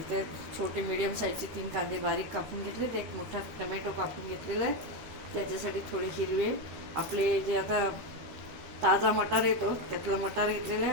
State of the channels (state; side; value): late; left; 13 ms